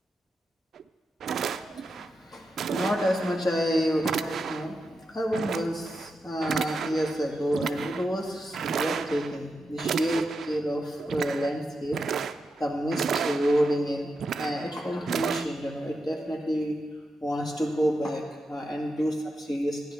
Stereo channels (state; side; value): normal; both; correlation 0.87